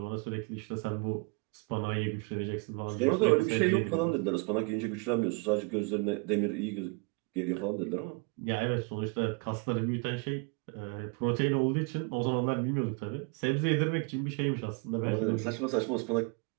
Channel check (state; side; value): quieter; left; 30.7 dB